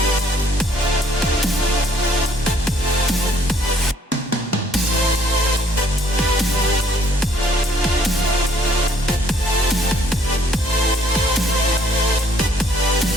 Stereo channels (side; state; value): both; normal; correlation 0.63